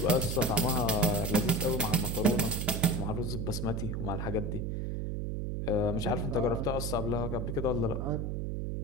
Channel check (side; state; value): right; noise; hum, 2 dB below the sound